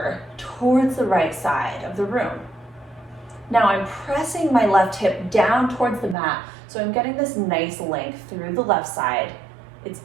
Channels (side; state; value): left; drops out; at 6.2 s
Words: towards the right side of the room. Now I'm pressing my left hip down towards the mat, so I'm getting this nice length through the left side. It's